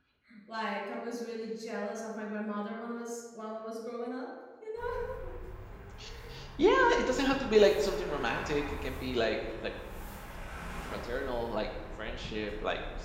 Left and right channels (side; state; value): both; identical; correlation 1.00